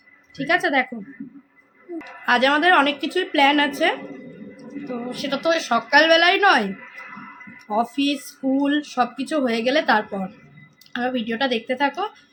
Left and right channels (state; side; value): identical; both; correlation 1.00